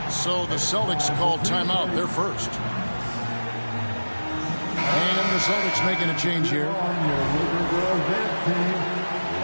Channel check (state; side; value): inverted; both; correlation -1.00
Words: So the Celtics call timeout. They're first. And the Celtics making a change here.